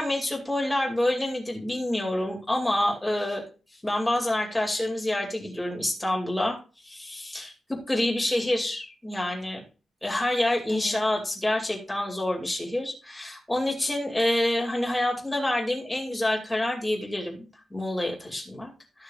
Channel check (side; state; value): both; normal; correlation 0.96